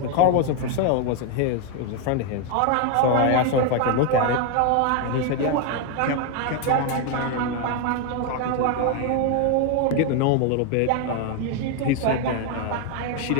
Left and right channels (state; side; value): different; both; correlation 0.01